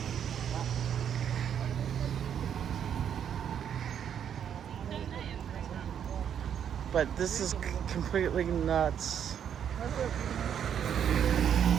But this is completely nuts.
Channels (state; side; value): quieter; left; 8.7 dB